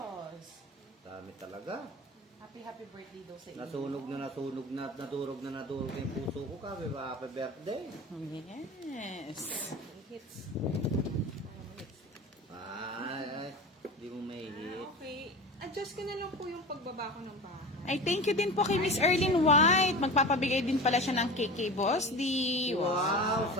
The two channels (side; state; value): both; normal; correlation 0.32